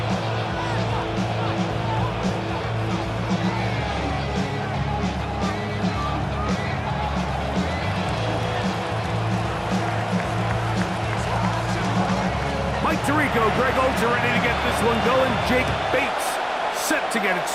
Mike Tirico, Greg Olds are ready to get this one going. Jake Bates set to get it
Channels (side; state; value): both; identical; correlation 1.00